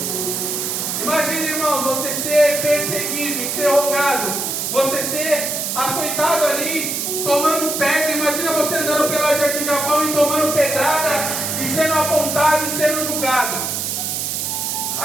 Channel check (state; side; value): noise; right; hiss, 2 dB below the sound